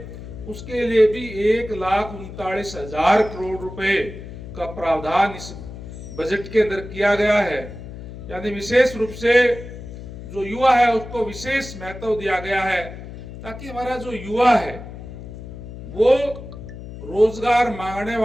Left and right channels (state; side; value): noise; left; hum, 12 dB below the sound